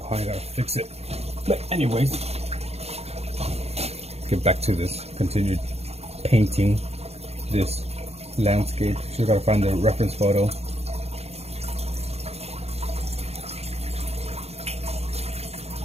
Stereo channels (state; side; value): late; left; 0.30 ms